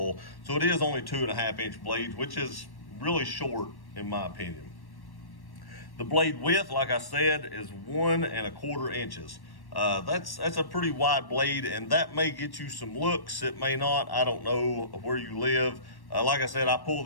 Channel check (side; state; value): right; late; 1.1 ms